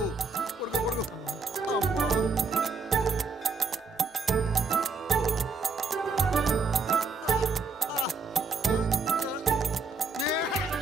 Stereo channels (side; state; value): left; quieter; 4.3 dB